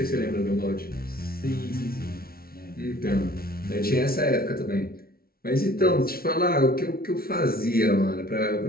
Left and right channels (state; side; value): late; right; 0.44 ms